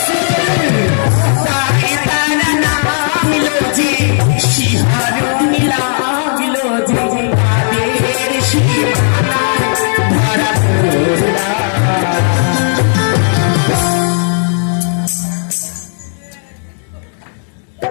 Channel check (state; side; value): silent; right; 64 dB below the other